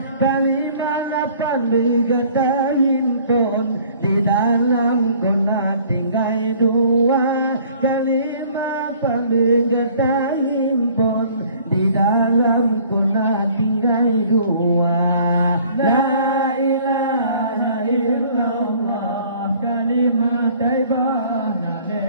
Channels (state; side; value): inverted; both; correlation -0.54